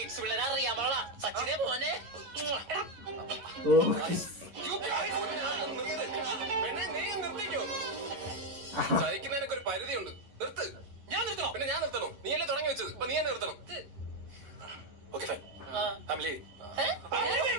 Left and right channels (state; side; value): late; left; 11 ms